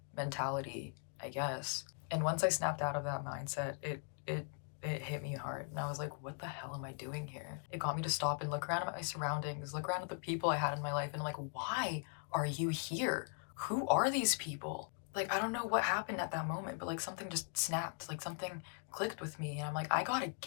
mentality, I guess. And once I snapped out of that mindset, it hit me hard. And I was like, what the hell am I doing here? It got me to stop and look around at my surroundings, look around at the people I had in my life, and I'm like, why are you here? Who are these people? Like, I don't know what happened at that moment, but like something just snapped, like something clicked with me. And I'm like, I gotta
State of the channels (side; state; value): right; silent; 51 dB below the other